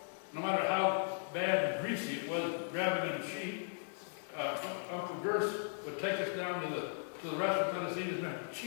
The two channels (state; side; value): silent; right; digital silence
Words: no matter how bad and greasy it was grabbing in a sheep, Uncle Gers would take us down to the restaurant and let us eat as many